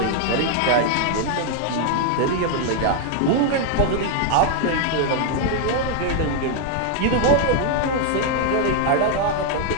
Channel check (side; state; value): both; different; correlation 0.00